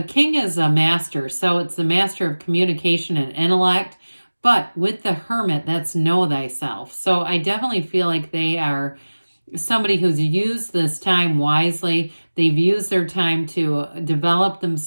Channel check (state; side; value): inverted; both; correlation -1.00